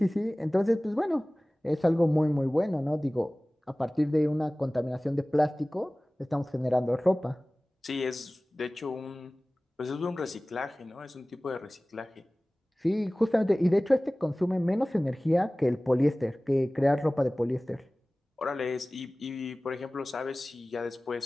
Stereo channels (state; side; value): normal; both; correlation 0.98